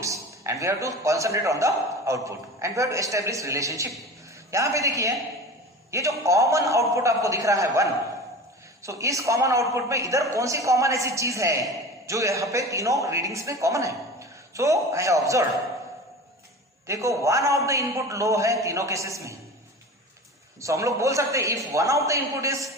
and we have to concentrate on the output and we have to establish relationship. यहां पे देखिए, ये जो कॉमन आउटपुट आपको दिख रहा है 1, सो इस कॉमन आउटपुट में इधर कौन सी कॉमन ऐसी चीज है जो यहाँ पे तीनों रीडिंग्स में कॉमन है? सो आई हैव ऑब्जर्व, देखो one of the input low है तीनों केसेस में। सो हम लोग बोल सकते हैं if one of the input is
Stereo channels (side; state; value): both; normal; correlation 0.34